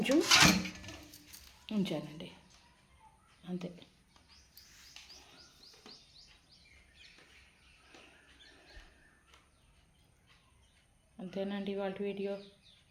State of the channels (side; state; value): both; identical; correlation 1.00